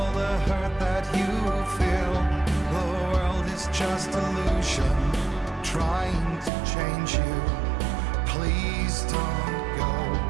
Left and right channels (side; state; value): left; drops out; at 6.5 s